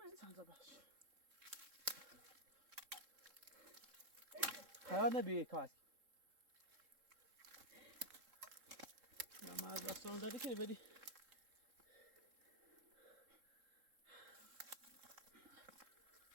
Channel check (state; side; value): late; left; 3.7 ms